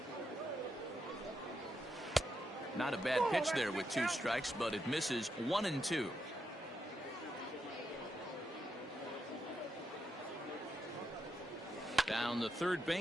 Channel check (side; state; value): both; normal; correlation 0.83